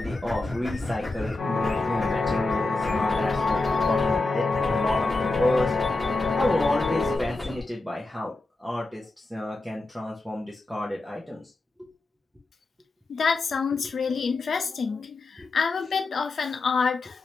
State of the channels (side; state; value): right; quieter; 3.2 dB